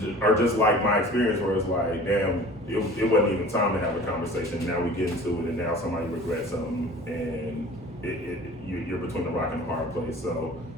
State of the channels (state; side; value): normal; both; correlation 0.44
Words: are just like my experience where it's like, damn, it wasn't even time to have a conversation. Now we get into it and now somebody regrets something and you're between the rock and the hard place. So